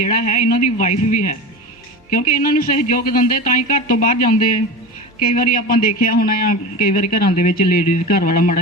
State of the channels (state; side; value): normal; both; correlation 0.28